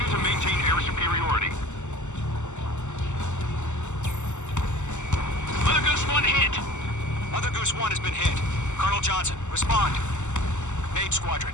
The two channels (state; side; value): late; right; 0.84 ms